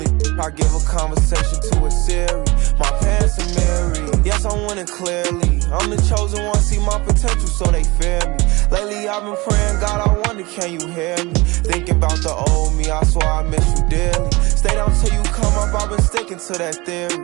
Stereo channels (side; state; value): left; quieter; 23.2 dB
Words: I give a conversation to a Siri. My pants are married. Yes, I'm winning clearly. I'm the chosen one, see my potential, so they fear me. Lately, I've been praying, God, I wonder, can you hear me? Thinking about the old me, I swear I miss you dearly. Stay down till you come up, I've been sticking to that theory.